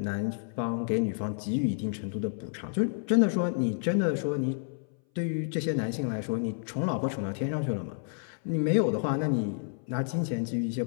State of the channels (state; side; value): silent; right; 58 dB below the other